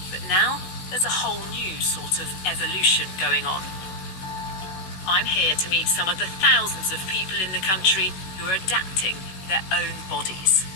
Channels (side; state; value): right; late; 16 ms